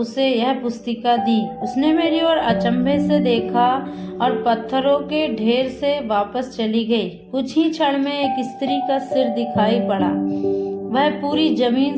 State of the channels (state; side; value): identical; both; correlation 1.00